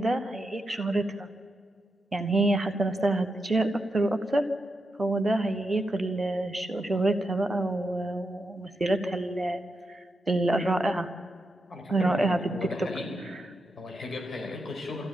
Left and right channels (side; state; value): both; normal; correlation 0.86